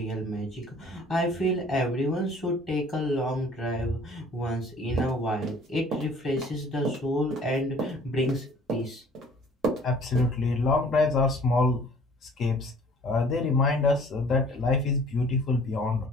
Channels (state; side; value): normal; both; correlation 0.52